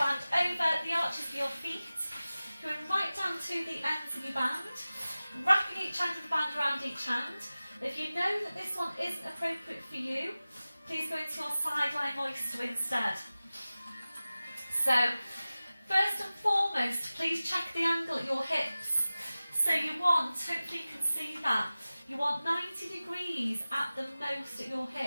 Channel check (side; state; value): both; inverted; correlation -0.97